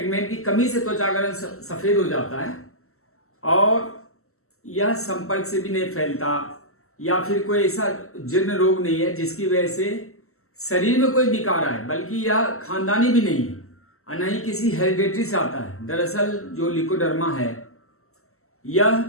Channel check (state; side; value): late; right; 0.63 ms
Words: की कमी से त्वचा का रंग सफेद हो जाता है और यह संपर्क से भी नहीं फैलता या फिर कोई ऐसा जीर्ण रोग नहीं है जिसकी वजह से शरीर में कोई विकार आए, बल्कि यह खानदानी भी नहीं है और न ही किसी हेरिडेटरी से आता है। दरअसल जो ल्यूकोडर्मा है यह